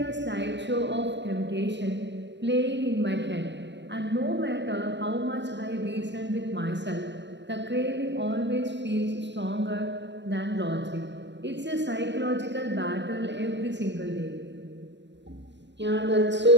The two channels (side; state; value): left; late; 0.52 ms